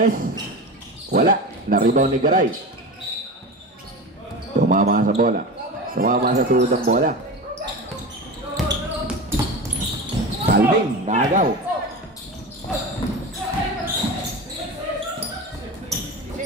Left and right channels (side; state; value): both; normal; correlation 0.27